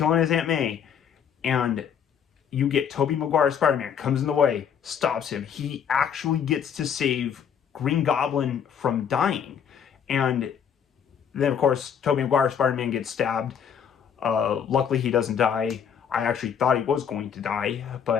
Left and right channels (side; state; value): right; quieter; 7.9 dB